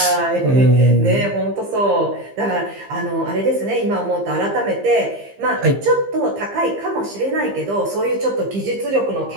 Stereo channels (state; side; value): late; left; 15 ms